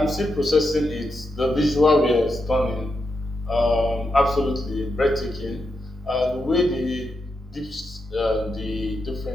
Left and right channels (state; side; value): normal; both; correlation 0.85